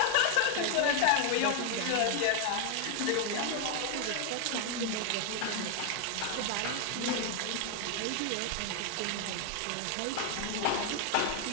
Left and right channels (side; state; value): both; different; correlation 0.00